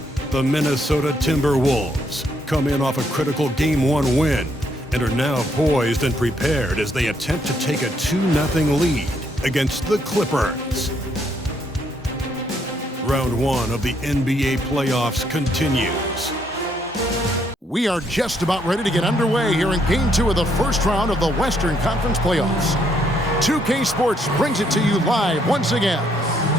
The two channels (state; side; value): normal; both; correlation 0.72